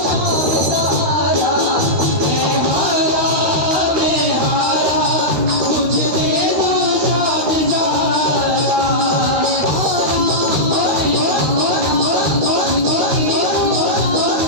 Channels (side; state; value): left; late; 13 ms